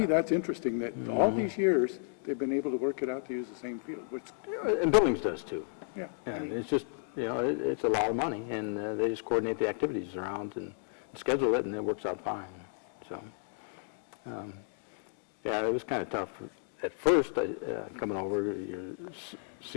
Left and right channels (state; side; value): silent; right; digital silence